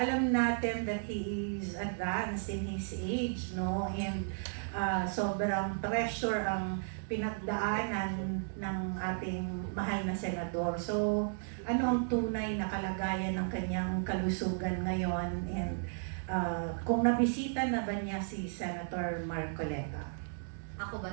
natin that he is advanced in his age, no? And sobrang pressure ang pinagdaanan ng ating mahal na senador. So, ano ang tunay na kalagayan ng kanyang kalusugan ngayon? And kung nabisita na ba niya si Senator Marcoleta? Ako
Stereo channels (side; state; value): left; silent; digital silence